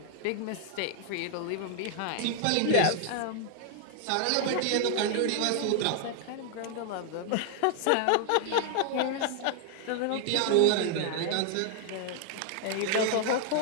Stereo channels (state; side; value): different; both; correlation 0.00